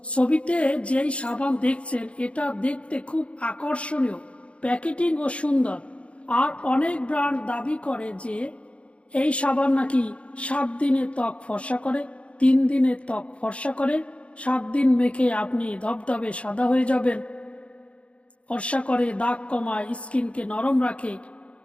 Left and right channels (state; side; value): late; right; 0.061 ms